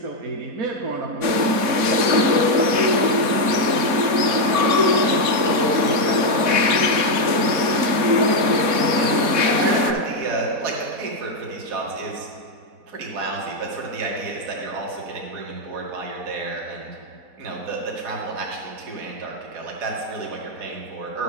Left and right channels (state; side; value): late; left; 4.1 ms